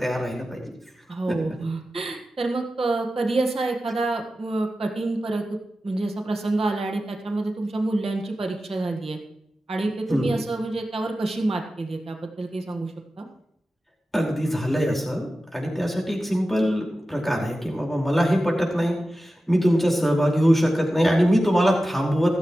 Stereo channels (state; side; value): normal; both; correlation 0.93